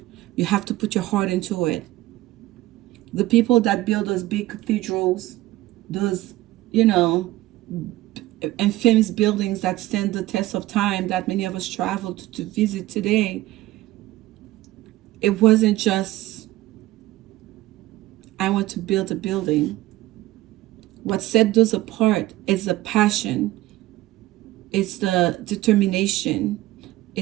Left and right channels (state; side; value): quieter; left; 16.4 dB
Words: You have to put your heart into it. The people that build those big cathedrals, those, you know, and famous buildings that stand the test of time that many of us travel to visit today, it wasn't just, I want to build a building. What set those apart is the passion. It's the determination.